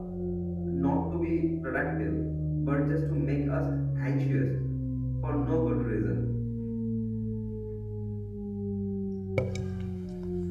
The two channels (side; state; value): both; identical; correlation 1.00